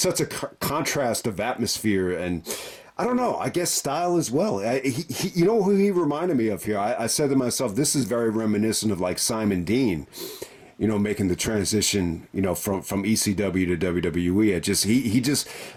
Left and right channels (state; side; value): identical; both; correlation 1.00